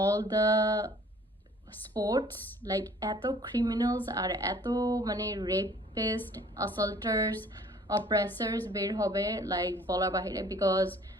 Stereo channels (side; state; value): both; normal; correlation 0.53